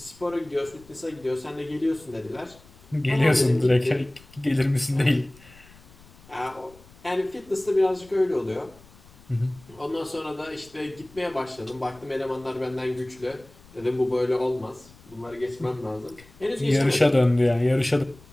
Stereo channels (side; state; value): left; noise; rumble, 24 dB below the sound